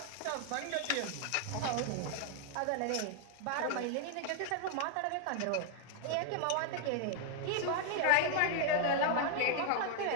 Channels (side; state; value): both; different; correlation 0.00